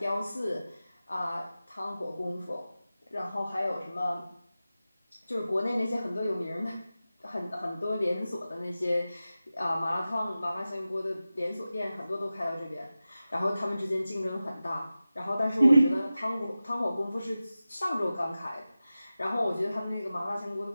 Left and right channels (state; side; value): inverted; both; correlation -0.95